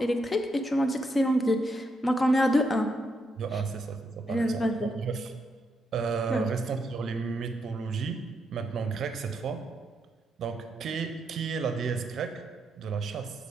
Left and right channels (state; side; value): normal; both; correlation 0.80